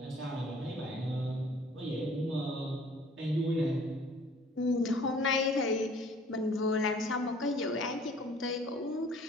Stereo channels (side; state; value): both; normal; correlation 0.53